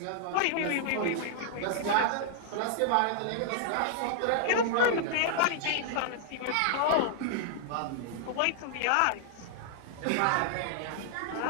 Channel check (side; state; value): both; different; correlation -0.01